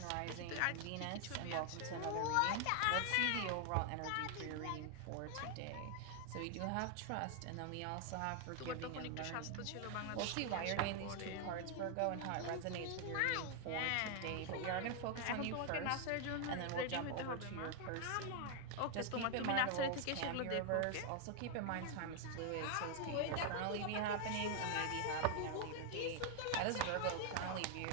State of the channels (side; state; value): both; different; correlation 0.00